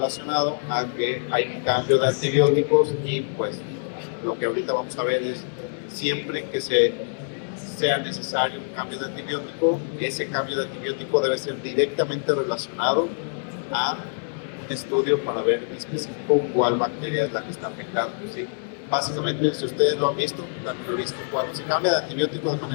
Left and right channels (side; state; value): right; silent; digital silence